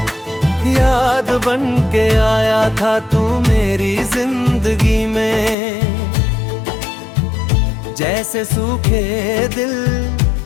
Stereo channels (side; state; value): right; drops out; at 5.6 s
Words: याद बन के आया था तू मेरी जिंदगी में, जैसे सूखे दिल